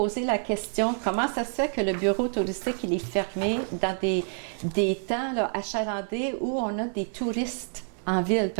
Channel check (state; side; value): silent; left; 57 dB below the other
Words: la question, comment ça se fait que le bureau touristique, il est fermé dans des temps là, achalandés où on a des touristes en ville?